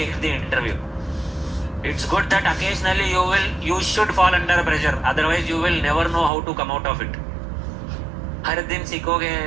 the interview. It's good that occasionally you should fall under pressure. Otherwise you will never know how to come out of it. हर दिन सीखोगे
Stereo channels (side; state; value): left; drops out; at 6.3 s